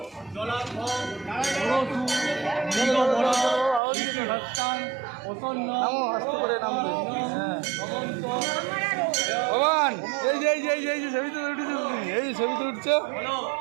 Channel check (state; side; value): drops out; left; at 3.8 s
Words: নামো আস্তে করে নামবে হ্যাঁ ভগবান এই যে এই যে এই যে এই যে ছবিতে উঠেছে তুমি এই যে ছবিতে উঠছো